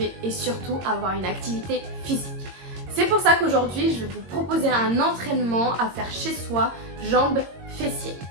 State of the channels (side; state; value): left; late; 22 ms